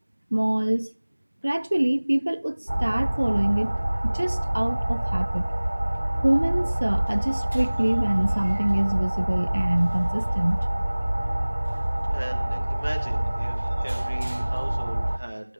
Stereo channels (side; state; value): both; inverted; correlation -1.00